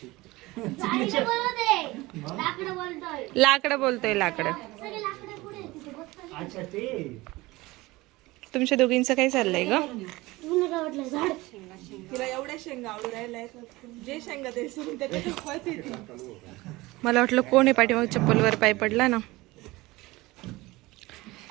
लाकडं बोलतोय लाकडं. तुमच्या दोघींचं काय चाललंय ग? तिला एवढ्या शेंगा आवडू राहिल्या, जे शेंगा ते मला वाटलं कोण आहे पाठीमाग चप्पलवर पाय पडला ना.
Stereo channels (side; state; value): left; quieter; 20.6 dB